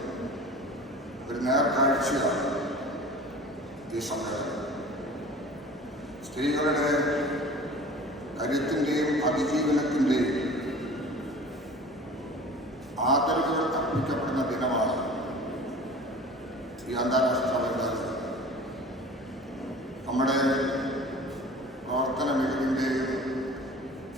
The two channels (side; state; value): both; normal; correlation 0.42